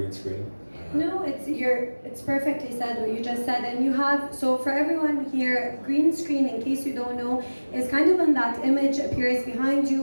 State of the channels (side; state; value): both; inverted; correlation -1.00